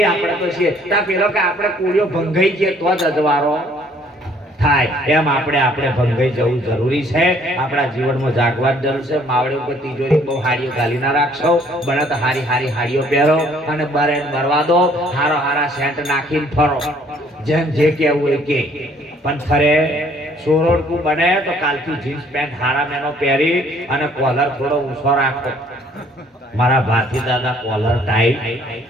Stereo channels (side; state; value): both; normal; correlation 0.61